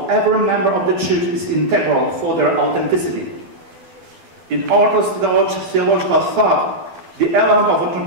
every member of the church is integral for their authenticity. In Orthodox theological thought, the elements of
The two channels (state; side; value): late; left; 12 ms